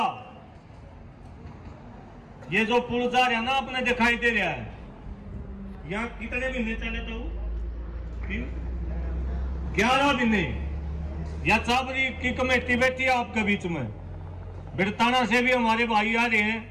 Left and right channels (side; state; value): both; identical; correlation 1.00